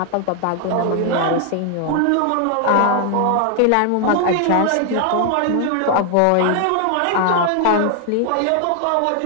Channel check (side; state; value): both; different; correlation 0.00